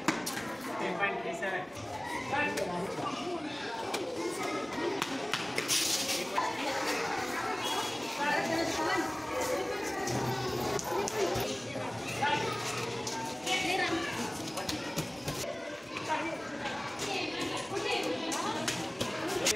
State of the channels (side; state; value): right; noise; hum, 29 dB below the sound